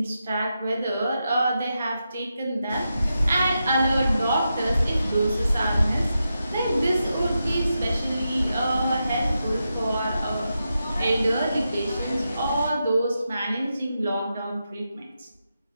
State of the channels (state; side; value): inverted; both; correlation -0.88